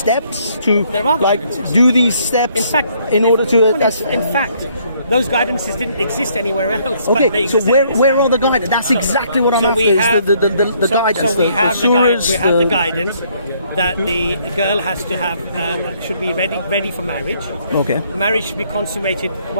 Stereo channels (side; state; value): both; inverted; correlation -0.66